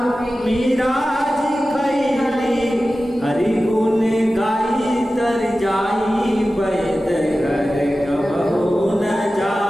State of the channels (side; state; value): both; normal; correlation 0.95